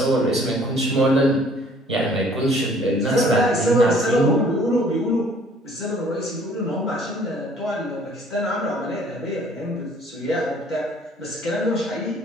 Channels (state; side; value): normal; both; correlation 0.57